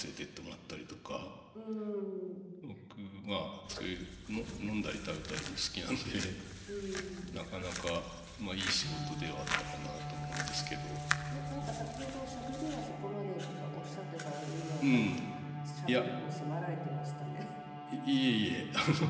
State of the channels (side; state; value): both; identical; correlation 1.00